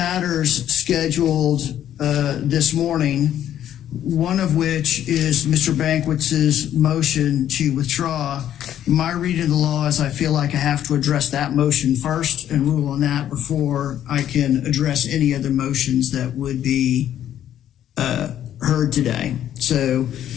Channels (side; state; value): right; quieter; 11.0 dB